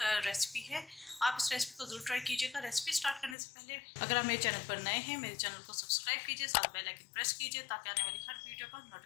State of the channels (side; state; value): right; drops out; at 3.4 s